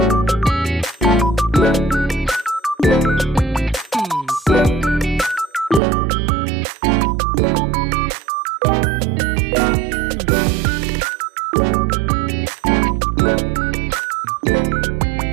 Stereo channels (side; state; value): left; drops out; at 5.8 s